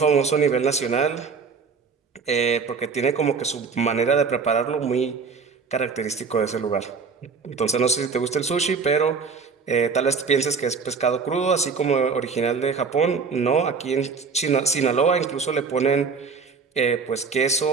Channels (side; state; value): left; quieter; 5.1 dB